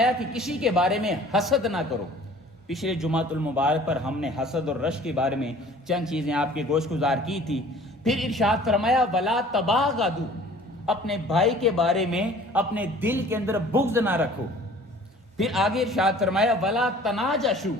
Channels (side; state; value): both; normal; correlation 0.49